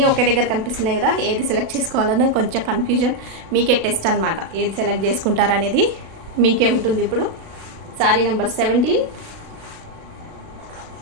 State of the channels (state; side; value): late; left; 36 ms